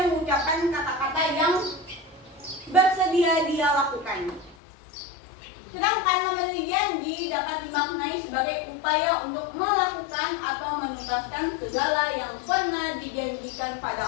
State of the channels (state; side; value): drops out; right; at 4.5 s